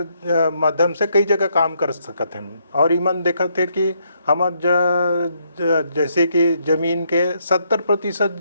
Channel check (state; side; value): inverted; both; correlation -0.74